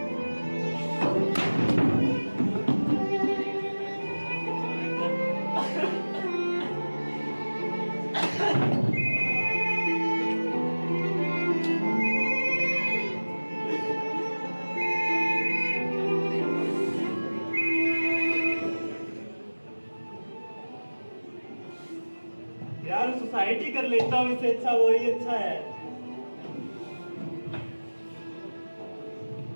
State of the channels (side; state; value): both; inverted; correlation -1.00